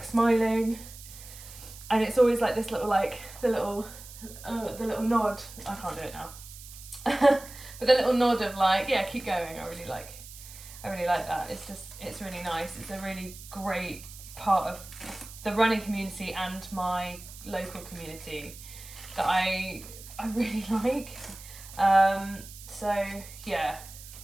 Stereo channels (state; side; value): noise; right; hiss, 16 dB below the sound